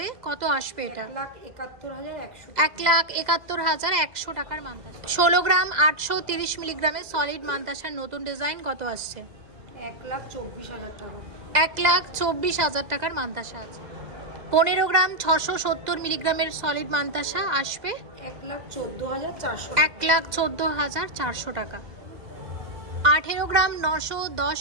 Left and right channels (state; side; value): late; left; 2.0 ms